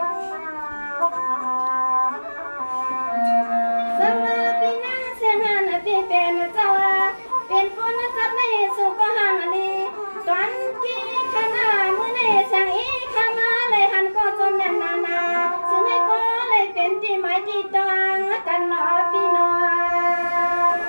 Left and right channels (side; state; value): both; inverted; correlation -1.00